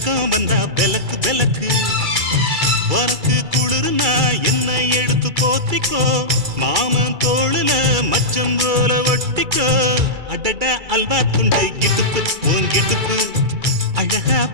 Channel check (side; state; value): left; late; 2.3 ms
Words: வந்தா பெலக்கு பெலக்கு உனக்கு குளிர்னா என்னை எடுத்து போத்திக்கோ மாமன் தோளுல மச்சம் போல ஒட்டிக்கோ அடட அல்வா துண்டு இடுப்பு ஓங்கிடுப்பு அழகா